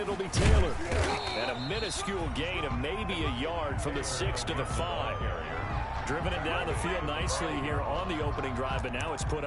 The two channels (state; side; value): identical; both; correlation 1.00